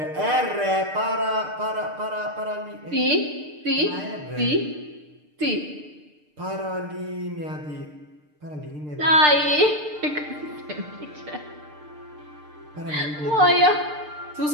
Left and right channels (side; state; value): left; late; 6.7 ms